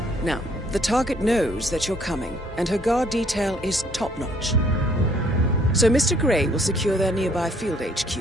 Now, the target knows that you're coming, and her guard detail is top-notch. So Mr. Gray will secure their nearby field HQ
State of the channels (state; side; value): normal; both; correlation 0.63